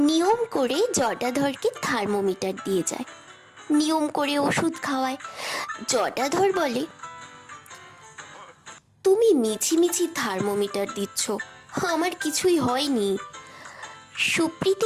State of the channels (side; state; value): both; identical; correlation 1.00